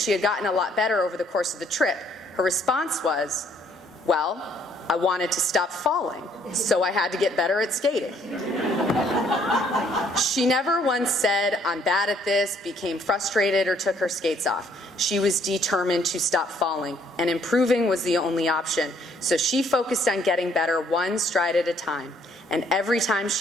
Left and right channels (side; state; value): both; normal; correlation 0.65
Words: had gotten a lot better over the course of the trip, her response was, "Well, I wanted to stop falling, so I had to get better at skating." She never once said, "I'm bad at this," became frustrated, or took her skates off. She was determined to stop falling, and improving was the only option. So she focused on getting better one stride at a time, and every time